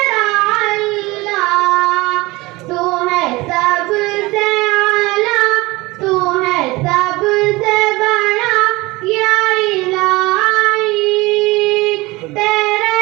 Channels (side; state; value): left; quieter; 21.7 dB